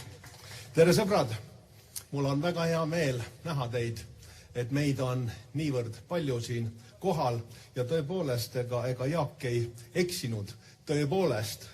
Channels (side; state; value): both; identical; correlation 1.00